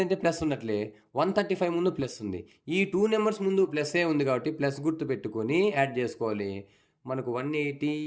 ప్లస్ ఉన్నట్లే 135 ముందు ప్లస్ ఉంది. ఈ 2 నెంబర్స్ ముందు ప్లస్ఏ ఉంది కాబట్టి ప్లస్ గుర్తు పెట్టుకొని యాడ్ చేసుకోవాలి. మనకు 180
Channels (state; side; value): identical; both; correlation 1.00